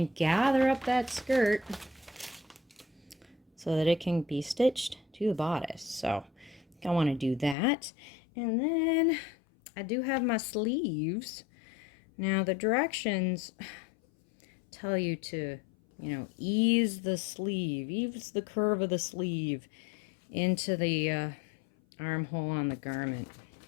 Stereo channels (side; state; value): right; drops out; at 7.6 s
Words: gather up that skirt so that it can be stitched to the bodice. So I want to do that. And then I do have my sleeves. Now the directions tell you to, ease the sleeve, ease the curve of the sleeve into the armhole on the garment.